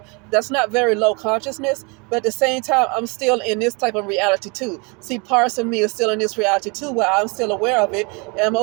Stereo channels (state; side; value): quieter; left; 30.8 dB